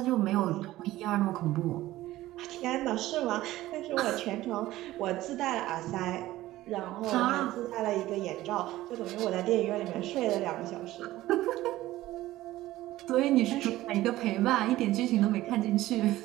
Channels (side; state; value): left; quieter; 16.1 dB